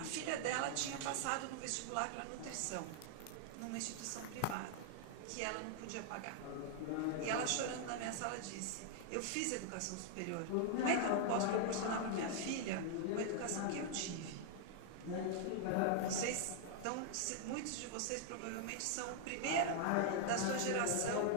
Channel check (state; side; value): different; both; correlation 0.00